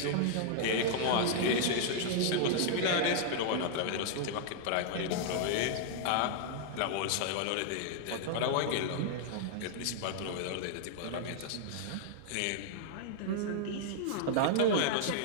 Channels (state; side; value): different; both; correlation -0.01